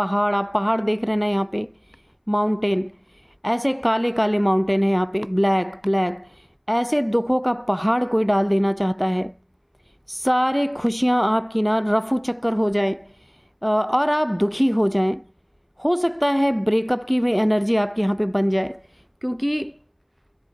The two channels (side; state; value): both; identical; correlation 1.00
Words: आप पहाड़ देख रहे हैं ना यहाँ पे, माउंटेन, ऐसे काले काले माउंटेन है यहाँ पे, ब्लैक ब्लैक, ऐसे दुखों का पहाड़ कोई डाल देना चाहता है। सारे खुशियाँ आपकी ना रफू चक्कर हो जाए और आप दुखी हो जाएं। हो सकता है ब्रेकअप की भी एनर्जी आपकी यहाँ पे बन जाए, क्योंकि